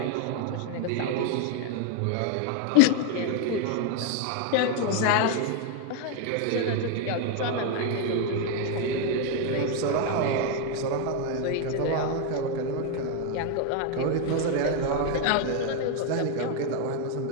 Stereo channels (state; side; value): different; both; correlation 0.01